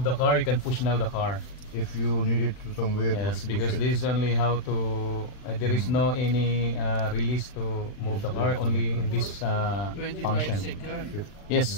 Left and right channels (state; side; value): late; right; 39 ms